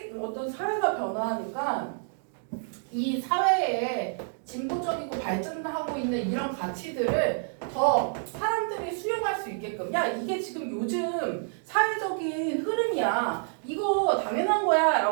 어떤 사회가 변화하니까 이 사회에 진보적이고 발전하고 있는 이런 가치들을 더 사람들이 수용할 수 있게끔, 야 이게 지금 요즘 사회적인 흐름이야, 이거 당연한 거야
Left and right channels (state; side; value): silent; left; digital silence